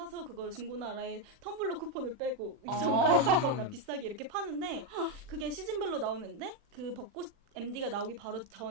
그걸 중고나라에 텀블러 쿠폰을 빼고 정가에 팔거나 비싸게 이렇게 파는데 그게 시즌별로 나오는데 그 벚꽃 MD가 나오기 바로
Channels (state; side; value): late; left; 40 ms